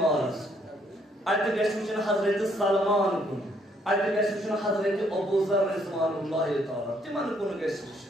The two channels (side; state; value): both; normal; correlation 0.69